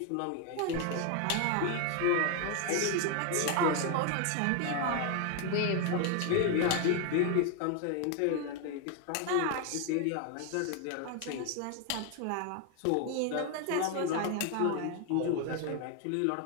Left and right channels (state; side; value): different; both; correlation 0.01